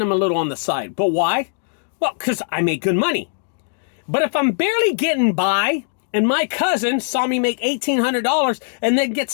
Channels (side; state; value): right; silent; digital silence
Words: him a little on the side. But why? Well, because I make good money. But if I'm barely getting by, and my cousin saw me make $1,800 and then